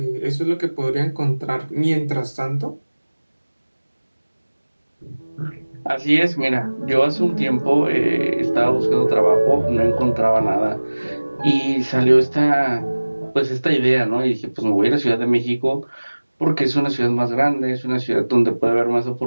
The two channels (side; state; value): both; inverted; correlation -1.00